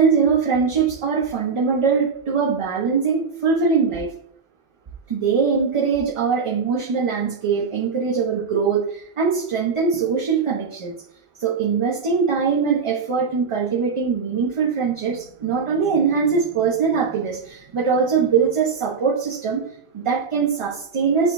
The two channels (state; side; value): quieter; left; 5.5 dB